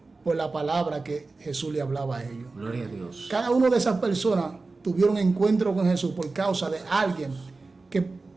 por la palabra que Jesús le hablaba a ellos. Gloria a Dios. Cada una de esas personas tuvieron encuentro con Jesús por causa de alguien que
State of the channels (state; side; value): quieter; left; 3.7 dB